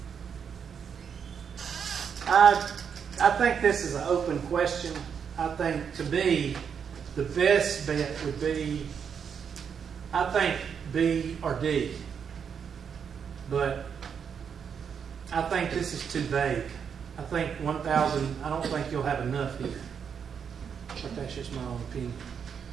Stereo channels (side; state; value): left; quieter; 7.1 dB